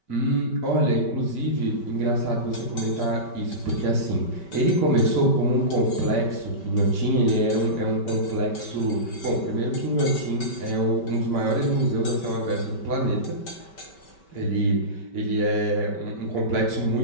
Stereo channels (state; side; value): late; right; 5.2 ms